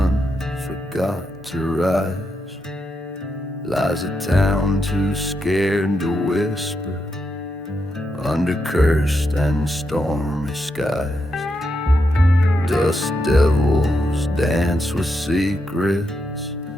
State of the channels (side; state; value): both; normal; correlation 0.83